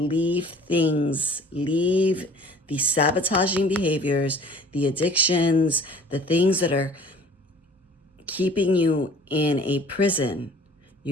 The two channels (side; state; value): both; normal; correlation 0.49